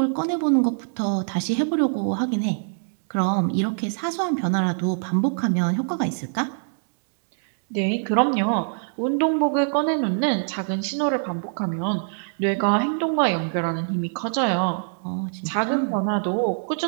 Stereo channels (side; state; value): left; silent; digital silence